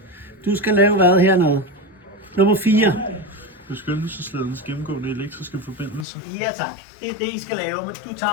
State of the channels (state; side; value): drops out; right; at 6.1 s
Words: Du skal lave hvad hernede? Nummer 4. Beskyttelsesledens gennemgående elektriske forbindelse. Ja tak. Det er det, I skal lave, men du